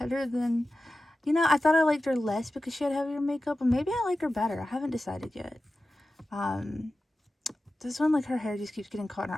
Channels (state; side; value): normal; both; correlation 0.94